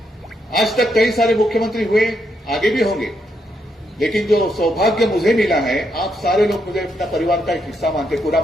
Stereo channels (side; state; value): both; normal; correlation 0.79